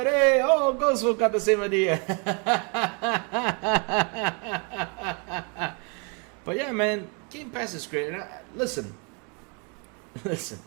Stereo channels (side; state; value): left; quieter; 34.8 dB